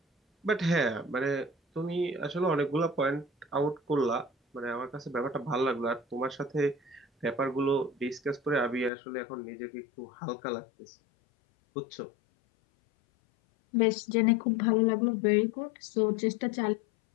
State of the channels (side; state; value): right; drops out; at 8.9 s